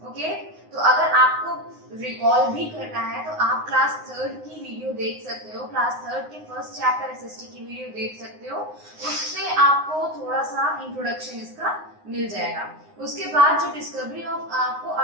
ओके, तो अगर आपको रिकॉल भी करना है तो आप क्लास 3rd की वीडियो देख सकते हो। क्लास 3rd के फर्स्ट चैप्टर एसएसटी की वीडियो देख सकते हो, उससे आपको थोड़ा सा इंट्रोडक्शन इसका मिल जाएगा। उसके बाद जो डिस्कवरी ऑफ, आपको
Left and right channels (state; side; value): late; left; 9.6 ms